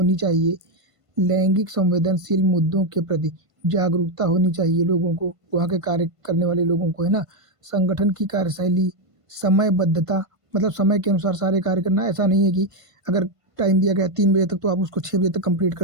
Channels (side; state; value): left; late; 1.5 ms